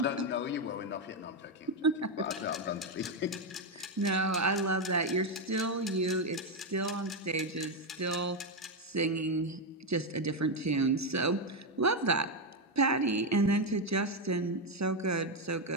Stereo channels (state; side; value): normal; both; correlation 0.06